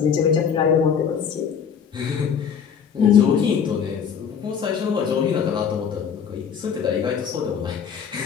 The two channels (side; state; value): right; quieter; 7.3 dB